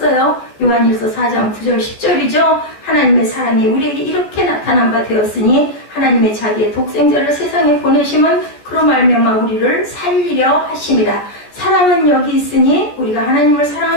요한일서 4장 9절 10절이죠. 하나님의 사랑이 우리에게 이렇게 나타난 바 되었으니 하나님의 자기의 독생자를 세상에 보내심은 그로 말미암아 우리를 살리려 하심이라. 사랑은 여기 있으니 우리가 하나님을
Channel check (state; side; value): late; right; 14 ms